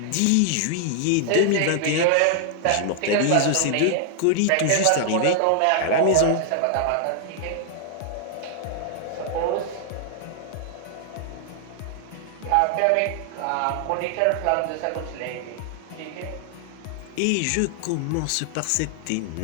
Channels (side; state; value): both; different; correlation 0.00